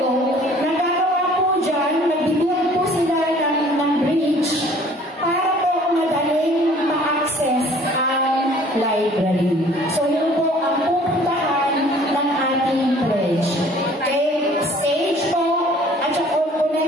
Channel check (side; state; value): both; normal; correlation 0.53